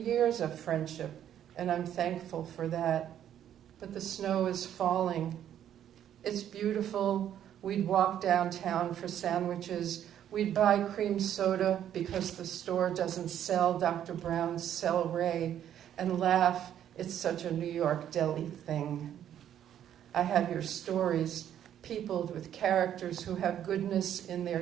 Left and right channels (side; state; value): left; quieter; 10.4 dB